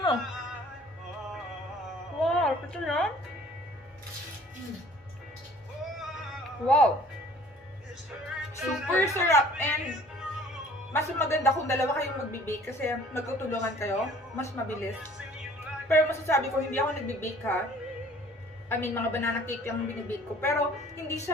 Wow. Ito na? Wow. Super sarap. And mas maganda kung dalawa kayong magbe-bake kasi magtutulungan kayo. Mas mabilis. Pero masasabi ko, hindi ako nagbe-bake ha. I mean, mga banana cake yung binibake ko. Pero, hindi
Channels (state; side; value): normal; both; correlation 0.53